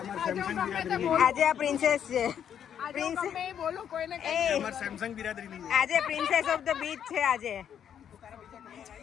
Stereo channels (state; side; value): quieter; right; 9.0 dB